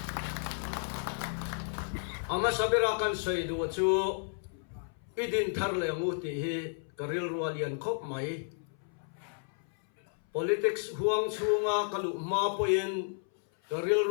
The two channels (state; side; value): silent; right; 56 dB below the other